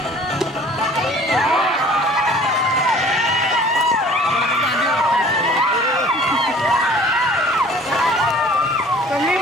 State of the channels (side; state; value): both; normal; correlation 0.50